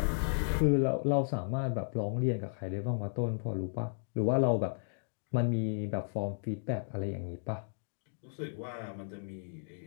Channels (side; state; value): right; silent; digital silence